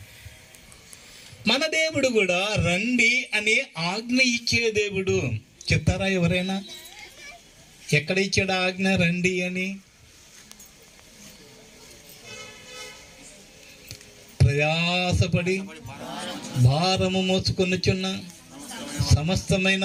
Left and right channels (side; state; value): both; identical; correlation 1.00